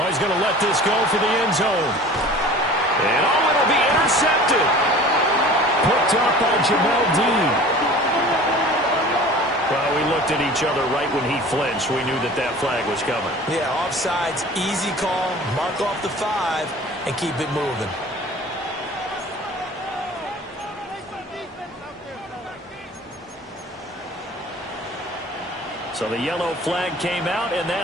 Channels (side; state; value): both; normal; correlation 0.43